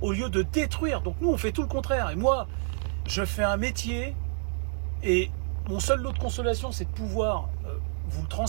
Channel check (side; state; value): left; silent; 59 dB below the other